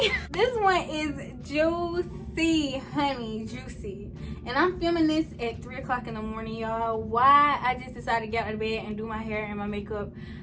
This one is juicy, honey, juicy. And I'm filming this at 3 o'clock in the morning, y'all. Why I just decided to get out of bed and do my hair and my makeup,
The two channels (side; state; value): both; identical; correlation 1.00